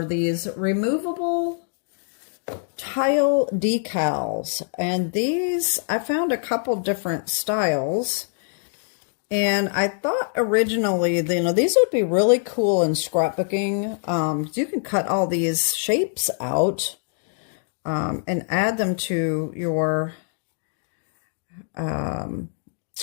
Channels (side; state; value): right; silent; 63 dB below the other